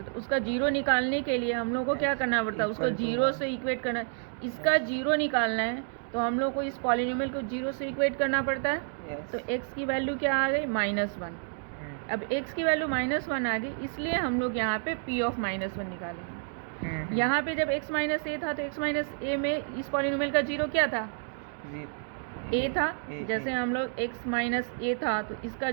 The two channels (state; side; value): silent; left; 58 dB below the other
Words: हैं। तो उसका जीरो निकालने के लिए हम लोग को क्या करना पड़ता है? उसको जीरो से इक्वेट करना है। इसका जीरो निकालना है तो हम लोग को इस पॉलिनोमियल को जीरो से इक्वेट करना पड़ता है। तो x की वैल्यू क्या आ गई? -1। अब x की वैल्यू -1 आ गई, इसलिए हम लोग यहाँ पे p ऑफ -1 निकालेंगे। यहाँ पे जब x माइनस ए था तो x माइनस ए में इस पॉलिनोमियल का जीरो क्या था? a था। जैसे हम लोग x माइनस ए था तो इसका